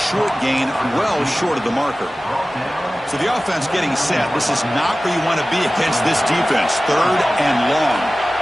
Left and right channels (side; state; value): both; normal; correlation 0.96